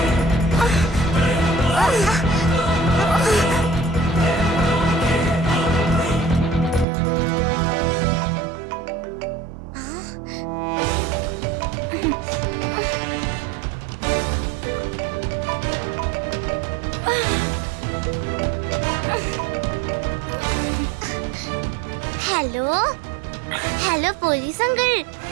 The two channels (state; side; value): drops out; left; at 6.9 s